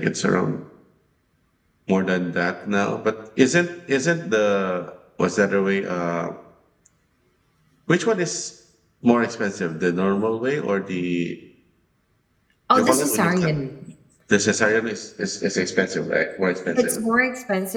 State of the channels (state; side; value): identical; both; correlation 1.00